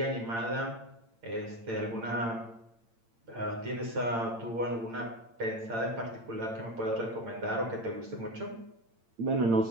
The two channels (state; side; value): late; left; 8.8 ms